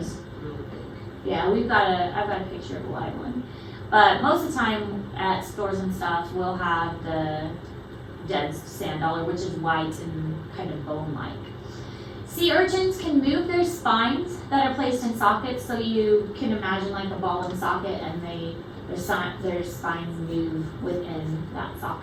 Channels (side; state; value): both; identical; correlation 1.00